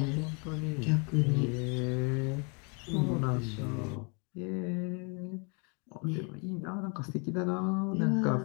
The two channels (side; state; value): right; quieter; 34.6 dB